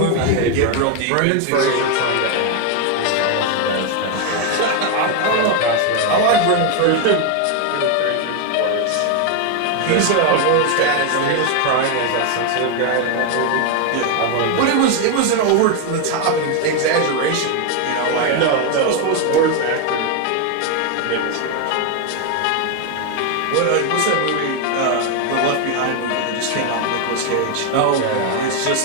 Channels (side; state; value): both; different; correlation 0.01